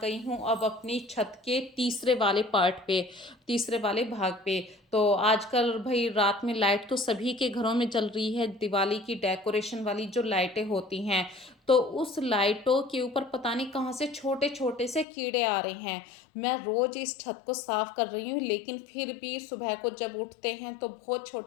गई हूँ अब अपनी छत के तीसरे वाले पार्ट पे, तीसरे वाले भाग पे। तो आजकल भाई रात में लाइट तो सभी के घरों में जल रही है, दिवाली की डेकोरेशन वाली जो लाइटें होती हैं, तो उस लाइटों के ऊपर पता नहीं कहाँ से छोटे छोटे से कीड़े आ रहे हैं। मैं रोज इस छत को साफ कर रही हूँ, लेकिन फिर भी सुबह को जब उठते हैं तो बहुत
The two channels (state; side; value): drops out; right; at 15.1 s